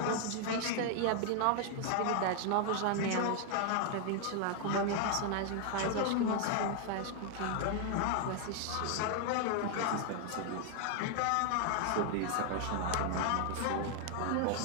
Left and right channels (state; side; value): different; both; correlation 0.00